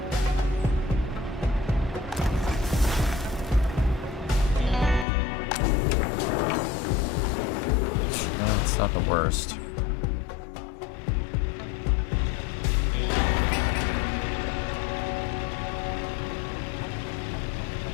It's not the worst.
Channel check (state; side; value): drops out; right; at 5.1 s